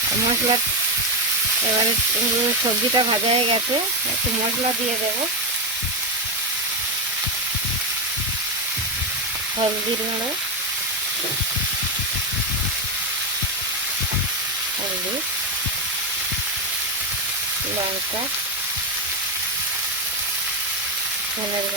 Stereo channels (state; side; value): normal; both; correlation 0.07